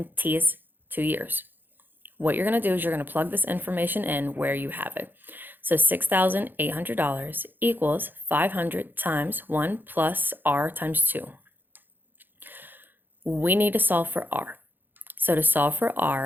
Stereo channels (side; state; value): left; late; 0.092 ms